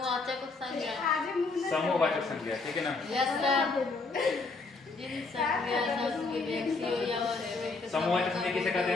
संज्ञा। आज मुझे समूहवाचक संज्ञा, ठीक है ना। Yes sir. जिन संज्ञा शब्द के व्यक्तियों या वस्तुओं के समूहवाचक संज्ञा किसे कहते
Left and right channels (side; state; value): right; quieter; 3.9 dB